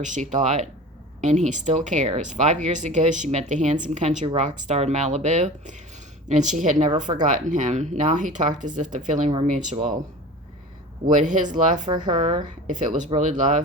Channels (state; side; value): normal; both; correlation 0.36